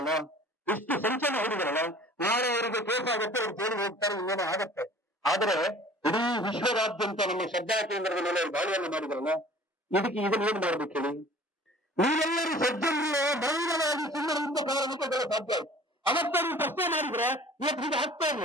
ಇಷ್ಟು ಸಂಚಲನ ಹೊಡಿದ್ರಲ್ಲ, ನಾಳೆ ಅವರಿಗೆ ಕೇಸ್ ಆಗುತ್ತೆ, ಅವ್ರು ಜೈಲಿಗೆ ಹೋಗ್ತಾರೆ, ಇನ್ನೇನೋ ಆಗತ್ತೆ. ಆದ್ರೆ ಇಡೀ ವಿಶ್ವದಾದ್ಯಂತ ನಮ್ಮ ಶ್ರದ್ಧಾ ಕೇಂದ್ರದ ಮೇಲೆ ಅವರು ದಾಳಿಯನ್ನು ಮಾಡಿದ್ರಲ್ಲ, ಇದಕ್ಕೆ ಇದನ್ನ ಏನ್ ಮಾಡ್ಬೇಕು ಹೇಳಿ? ನೀವೆಲ್ಲರೂ ಸಜ್ಜನರು ಮೌನವಾಗಿ ಸುಮ್ಮನಿಂದ ಕಾರಣಕ್ಕೆ ಸಾಧ್ಯ ಆಯ್ತು. ಅವತ್ತ ನೀವು ಪ್ರಶ್ನೆ ಮಾಡಿದ್ರೆ ಇವತ್ತು ಹೀಗೆ ಆಗ್ತಾ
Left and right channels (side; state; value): both; normal; correlation 0.47